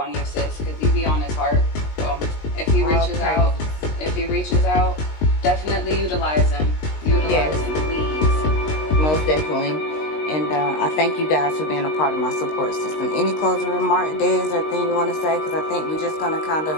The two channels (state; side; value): late; right; 19 ms